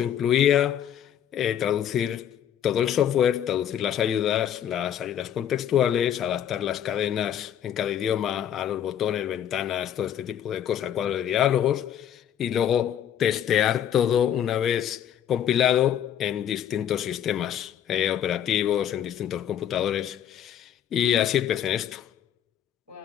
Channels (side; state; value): right; quieter; 10.0 dB